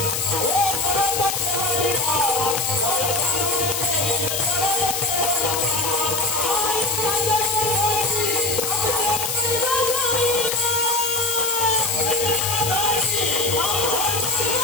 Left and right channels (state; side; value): noise; left; hiss, 1 dB below the sound